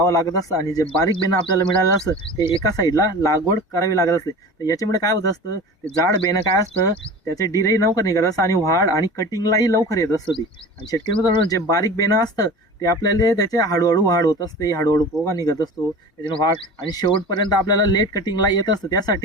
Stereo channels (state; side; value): normal; both; correlation 0.36